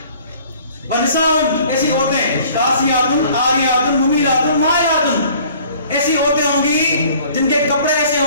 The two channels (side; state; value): both; inverted; correlation -0.53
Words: ونساء, ایسی عورتیں کاسیاتن عاریاتن ممیلاتن مائلاتن, ایسی عورتیں ہوں گی جن کے کپڑے ایسے